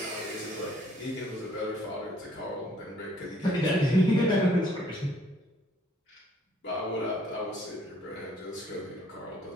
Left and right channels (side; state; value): both; normal; correlation 0.62